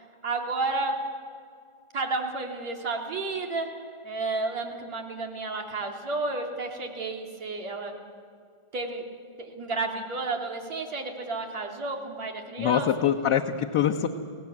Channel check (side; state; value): right; late; 1.4 ms